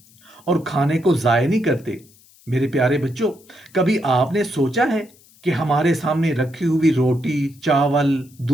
اور کھانے کو ضائع نہیں کرتے۔ میرے پیارے بچوں، کبھی آپ نے سوچا ہے کہ ہمارے سامنے رکھی ہوئی روٹی، چاول،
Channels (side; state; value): left; noise; hiss, 28 dB below the sound